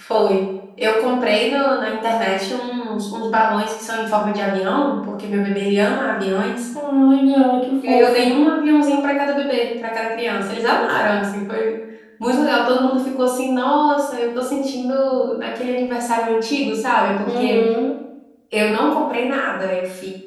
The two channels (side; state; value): both; identical; correlation 1.00